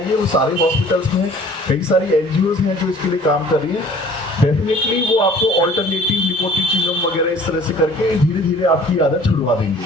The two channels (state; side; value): normal; both; correlation 0.51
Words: वो सारे हॉस्पिटल्स में कई सारी एनजीओज हैं जो इसके लिए काम कर रही हैं। डेफिनेटली वो आपको ऑल्टरनेटिव निकोटीन च्युइंगम वगैरह इस तरह से करके धीरे धीरे आपकी आदत छुड़वा